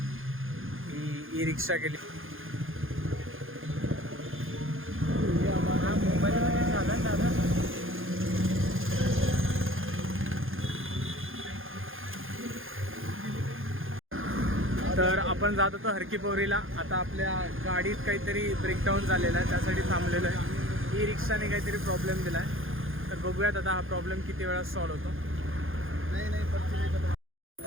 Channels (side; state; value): left; late; 0.59 ms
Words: ही रिक्षा केली. तर आपण जात होतो हरकीपोरीला. आता आपल्या गाडीत काहीतरी ब्रेकडाऊन झालेला आहे, त्यासाठी थांबलेलो आहे. ई रिक्षाने काहीतरी प्रॉब्लेम दिला आहे, तर बघूयात आता हा प्रॉब्लेम किती वेळा सॉल्व्ह होतो.